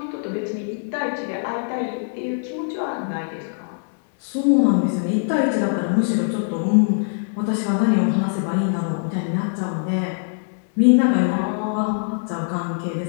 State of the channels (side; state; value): right; silent; digital silence